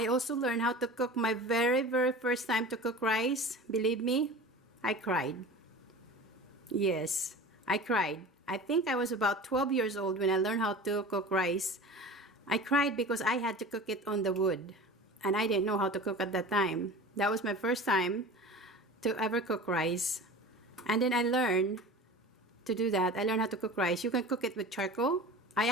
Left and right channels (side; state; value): both; normal; correlation 0.36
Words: also learned how to cook my very first time to cook rice. Believe me, I cried. Yes, I cried. I think I was about 12 years old when I learned how to cook rice. I cried because I had to cook it on the wood, and I didn't know how to cook at that time. That was my first time to ever cook rice. And then I learned to do that. I learned how to cook rice. You can cook it with charcoal. I